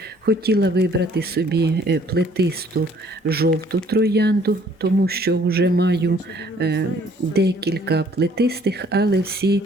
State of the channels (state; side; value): normal; both; correlation 0.59